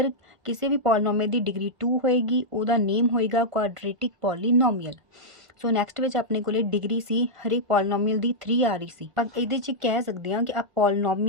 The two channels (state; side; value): late; left; 1.5 ms